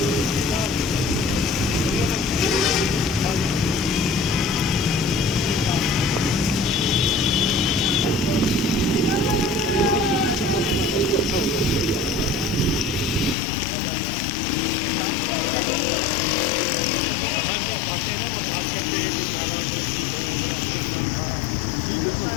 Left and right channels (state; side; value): drops out; right; at 13.4 s